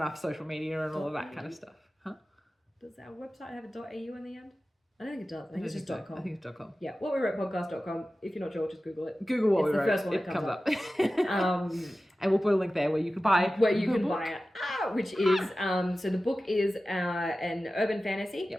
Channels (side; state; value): both; normal; correlation 0.95